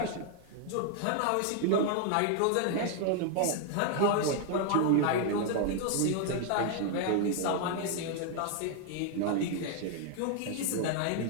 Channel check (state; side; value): different; both; correlation 0.00